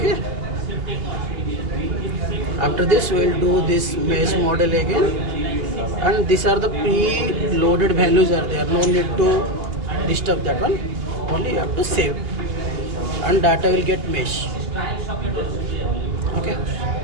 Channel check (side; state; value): left; late; 2.8 ms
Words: After this, we'll do this mesh model again. And these are the pre-loaded values are there. No need to disturb that one. Only you have to save. And data will get mesh. Okay.